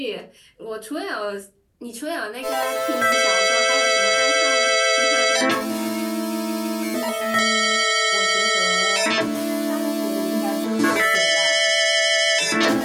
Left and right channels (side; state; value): both; identical; correlation 1.00